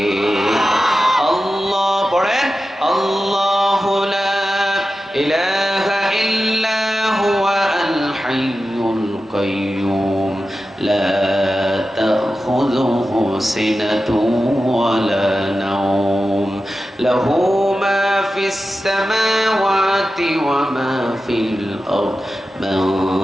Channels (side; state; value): both; normal; correlation 0.93